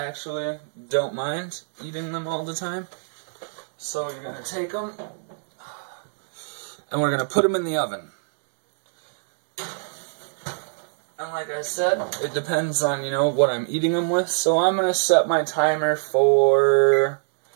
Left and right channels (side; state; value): left; silent; digital silence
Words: don't mind eating them all the time. So you're going to take them, and we're going to put them in the oven. And like I said, it depends on, you know, what I'm eating them with. So I'm going to set my timer for,